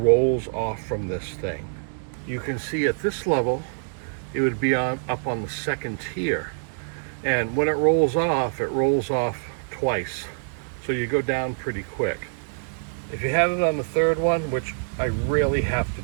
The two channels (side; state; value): left; silent; 62 dB below the other